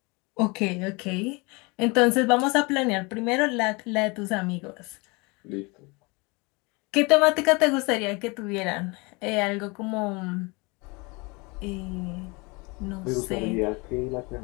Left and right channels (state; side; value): quieter; right; 27.5 dB